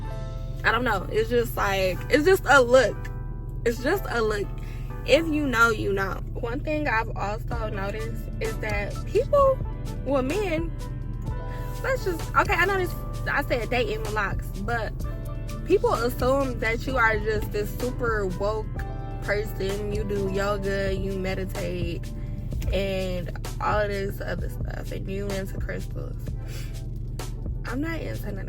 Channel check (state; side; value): identical; both; correlation 1.00